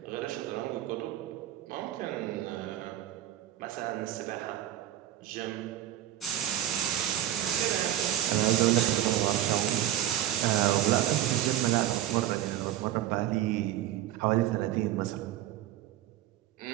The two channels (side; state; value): left; quieter; 12.4 dB